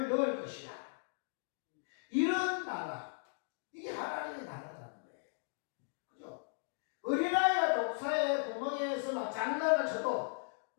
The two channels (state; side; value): silent; right; digital silence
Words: 넣을 것이라. 이런 나라, 이게 하나님의 나라라는 거예요. 그죠? 어린아이가 독사의 구멍에서 막 장난을 쳐도